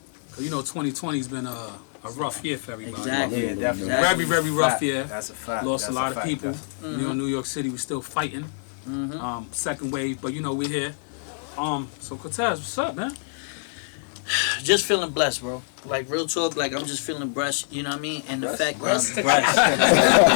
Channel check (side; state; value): right; silent; digital silence